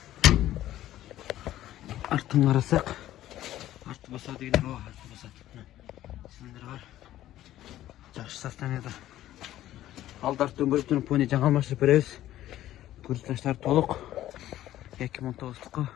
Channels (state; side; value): quieter; right; 13.6 dB